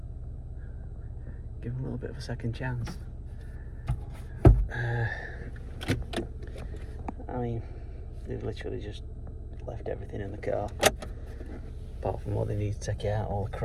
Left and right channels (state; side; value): identical; both; correlation 1.00